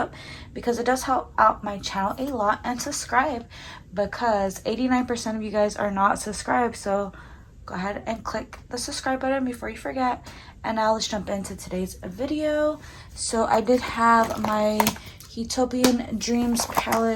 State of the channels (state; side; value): identical; both; correlation 1.00